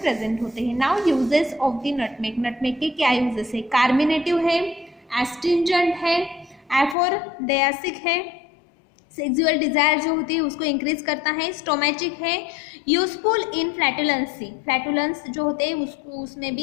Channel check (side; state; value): right; drops out; at 7.0 s